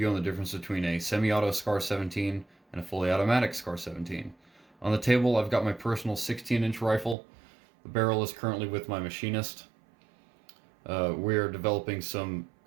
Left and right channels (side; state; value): left; drops out; at 7.2 s